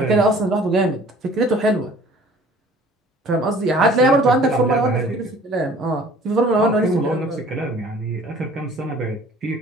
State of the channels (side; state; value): both; normal; correlation 0.51